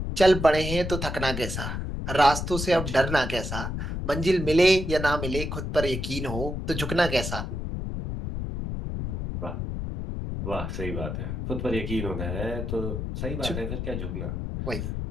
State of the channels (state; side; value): noise; left; rumble, 4 dB below the sound